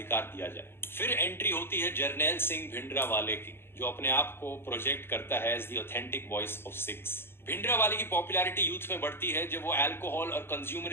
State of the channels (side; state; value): right; late; 0.11 ms